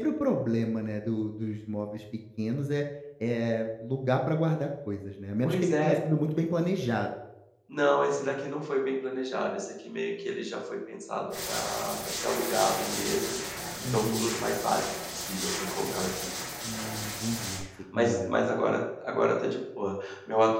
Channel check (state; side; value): identical; both; correlation 1.00